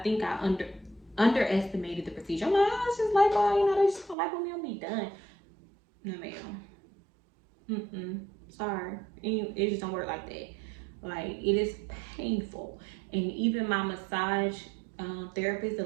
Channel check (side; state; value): left; drops out; at 4.2 s